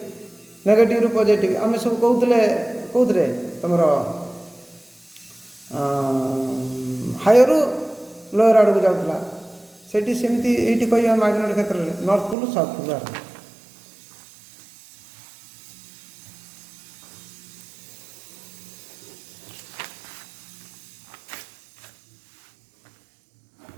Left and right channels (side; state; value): left; drops out; at 12.4 s